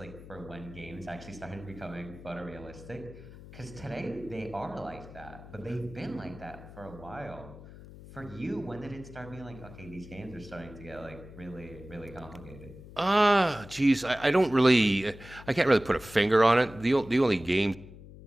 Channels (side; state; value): left; noise; hum, 17 dB below the sound